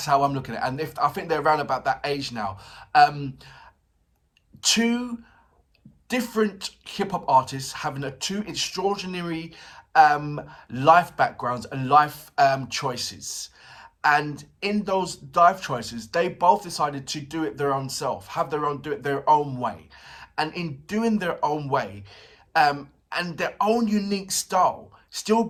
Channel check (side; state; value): both; identical; correlation 1.00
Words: how I'm looking at it. And I think they're around about that age now. Two different hip hop artists having two extraordinary life backgrounds and life choices. And in those life choices, they both decided to do it their own self, do it their own way. And in doing their own way, and their own unique style, still